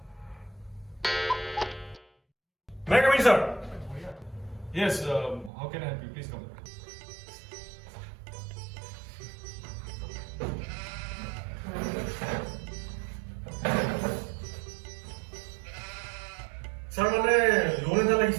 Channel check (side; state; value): left; drops out; at 5.5 s